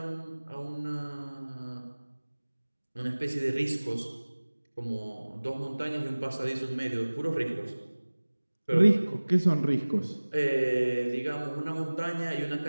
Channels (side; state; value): both; inverted; correlation -1.00